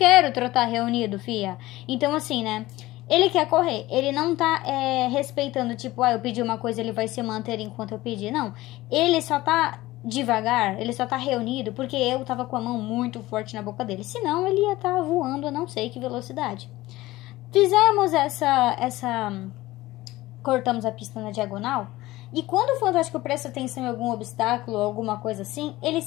trotar reunido, fia. Então assim, né? Ele quer correr, ele não tá respeitando, tipo, eu pedi uma coisa, ele vai se manter enquanto eu pedir. Não, ele só tá devagar, ele só tá reunido porque eu tava com a mão muito forte na boca dele. Senão ele ia estar voando a não sei que velocidade. Fizemos cortamos a pista na diagonal. E quando o Fantástico presta atenção em algum obstáculo ou alguma coisa assim, ele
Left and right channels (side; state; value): right; quieter; 17.9 dB